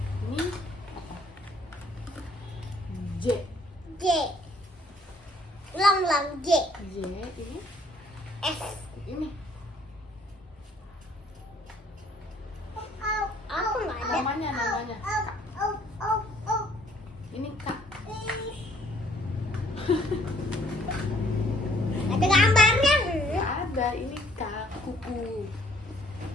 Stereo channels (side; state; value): both; normal; correlation 0.62